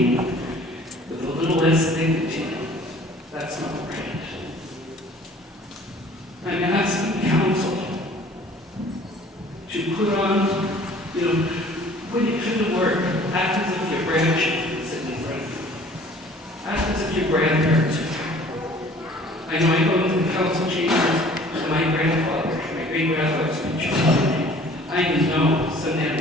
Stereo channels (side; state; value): both; normal; correlation 0.51